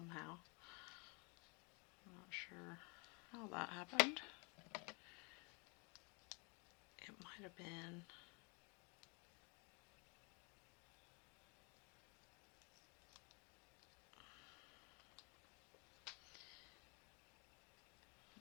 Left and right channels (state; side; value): quieter; right; 32.3 dB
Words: I'm not sure how that happened. It might have been